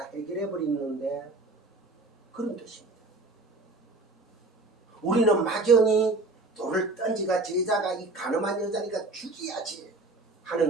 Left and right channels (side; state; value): left; quieter; 3.2 dB